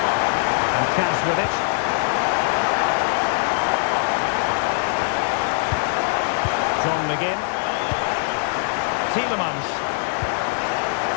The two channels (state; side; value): silent; right; digital silence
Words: And Cash with it. John McGinn. Tielemans.